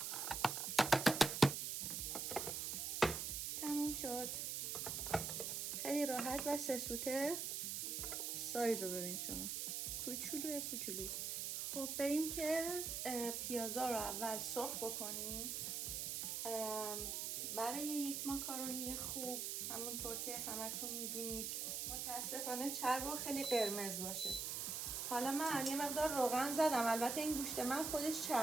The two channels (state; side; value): noise; right; hiss, 2 dB below the sound